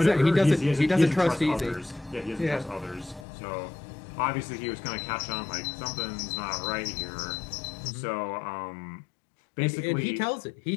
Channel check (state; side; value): drops out; right; at 3.2 s